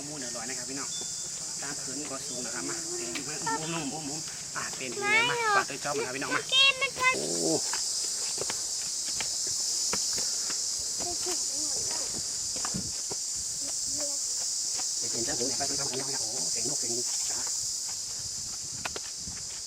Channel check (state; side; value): identical; both; correlation 1.00